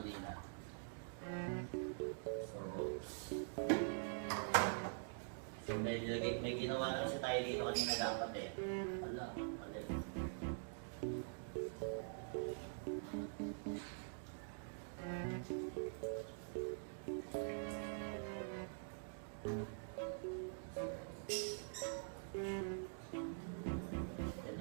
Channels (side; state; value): left; silent; digital silence